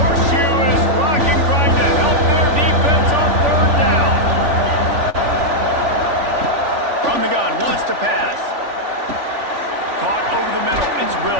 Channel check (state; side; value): late; left; 3.4 ms